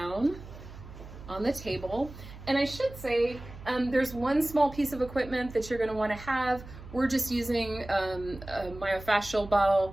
on the table. And I should say, there's one small piece of equipment that you're gonna wanna have. We're just using a myofascial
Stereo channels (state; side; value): noise; right; hum, 15 dB below the sound